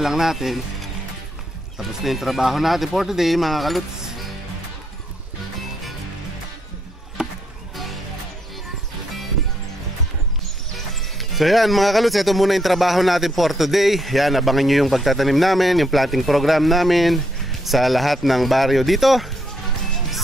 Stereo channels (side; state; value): both; normal; correlation 0.75